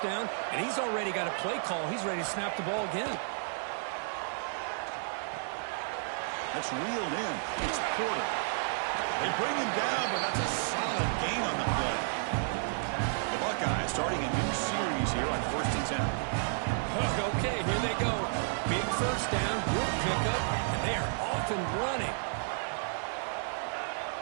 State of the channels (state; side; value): silent; left; digital silence